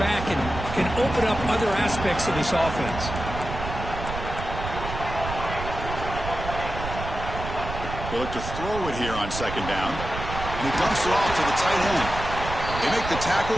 back and can open up other aspects of this offense. They look to throw it here on second down. And he dumps it off to the tight end. They make the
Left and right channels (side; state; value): right; noise; rumble, 7 dB below the sound